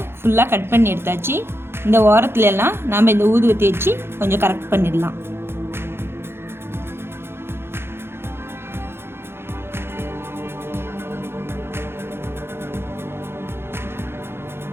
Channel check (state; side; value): late; left; 0.11 ms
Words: ஃபுல்லாக கட் பண்ணி எடுத்தாச்சு. இந்த ஓரத்துலலாம் நாம் இந்த ஊதுவத்தி வச்சு கொஞ்சம் கரெக்ட் பண்ணிடலாம்.